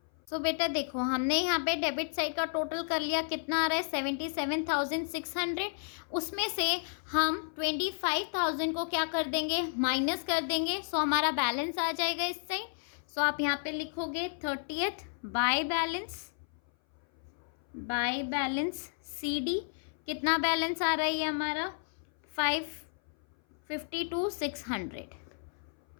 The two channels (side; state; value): right; silent; 56 dB below the other